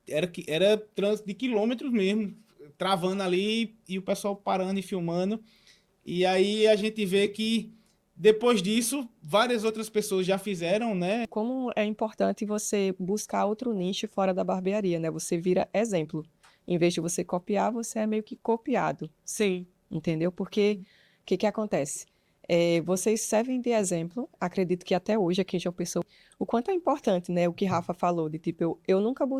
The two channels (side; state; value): both; identical; correlation 1.00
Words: era trânsito de quilômetros mesmo, travando ali e o pessoal parando e filmando. E aí a gente vê que depois disso, várias outras pessoas já fizeram, né? Como é importante você buscar outro nicho fora da barbearia, né? Você vira exemplo. Em vez de você copiar, você é meio que copiado, Sim. entendeu? Porque o que acontece? Vocês servem de exemplo, acredito que até hoje aqui em João Pessoa, o quanto é importante, né? O que Rafa falou, de tipo, eu nunca